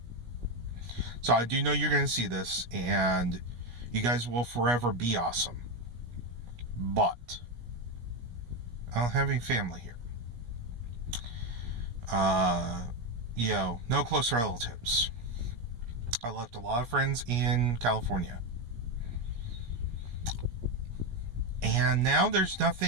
So I do know you're going to see this, and you guys will forever be awesome. But I don't have any family here. No close relatives. I left a lot of friends in California. And now there's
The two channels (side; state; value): left; late; 17 ms